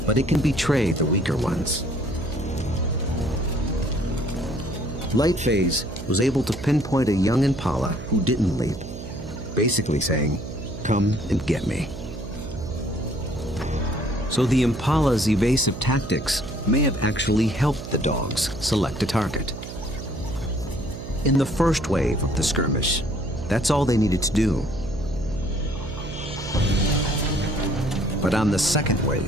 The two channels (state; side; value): noise; right; hum, 10 dB below the sound